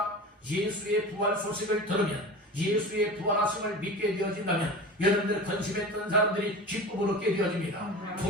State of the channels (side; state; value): both; normal; correlation 0.33